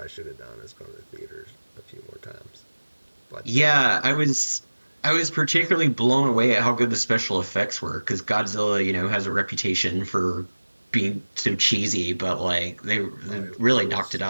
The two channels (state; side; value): inverted; both; correlation -1.00